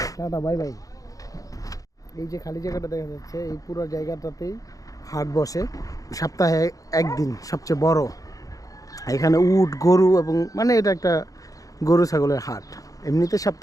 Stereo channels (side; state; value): right; late; 0.17 ms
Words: টাটা, বাই বাই। এই যে খালি জায়গাটা দেখা যাচ্ছে, এই পুরো জায়গাটাতেই হাট বসে সপ্তাহে একদিন, সবচেয়ে বড়। এখানে উট, গরু এবং মানে এটা একটা গরু ছাগলের হাট। এমনিতে